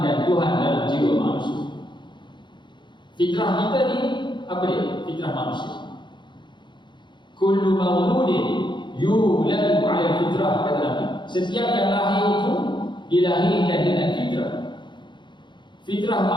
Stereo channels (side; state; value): right; late; 0.23 ms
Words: Tuhan dalam jiwa manusia. Fitrah kita ni apa dia? Fitrah manusia. Kullu mauludin yuladu 'ala fitrah, kata Nabi. Setiap yang lahir itu dilahirkan dengan fitrah. Fitrah